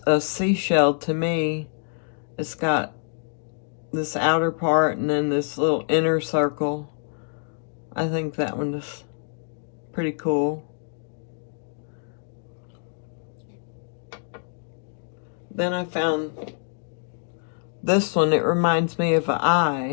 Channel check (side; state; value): right; silent; digital silence